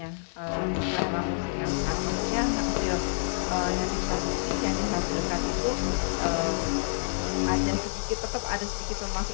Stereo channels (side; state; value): right; silent; 58 dB below the other